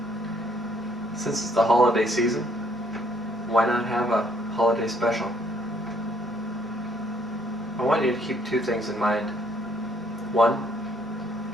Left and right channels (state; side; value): normal; both; correlation 0.66